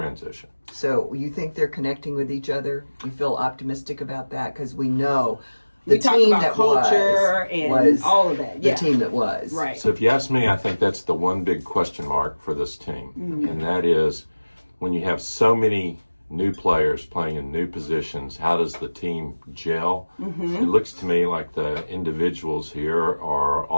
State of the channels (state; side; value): inverted; both; correlation -1.00